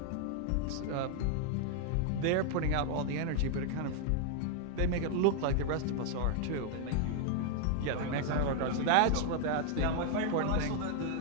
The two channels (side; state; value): both; different; correlation 0.00